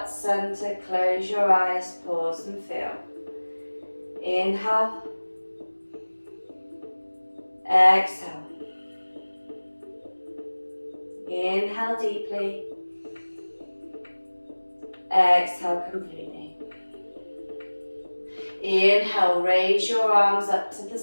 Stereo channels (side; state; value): both; inverted; correlation -1.00